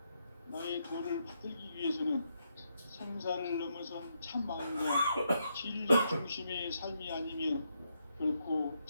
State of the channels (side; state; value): both; inverted; correlation -0.80